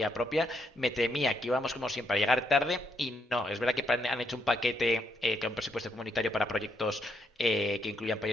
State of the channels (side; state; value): both; normal; correlation 0.76